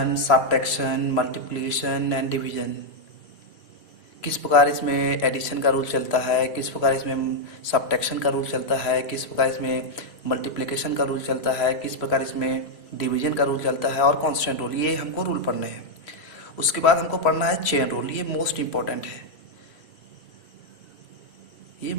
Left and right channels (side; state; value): right; late; 3.0 ms